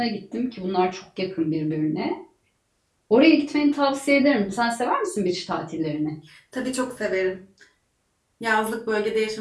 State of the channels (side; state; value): both; identical; correlation 1.00